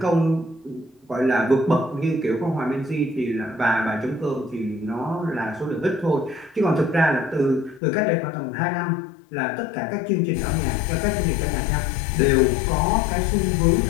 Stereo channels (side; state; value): right; drops out; at 7.8 s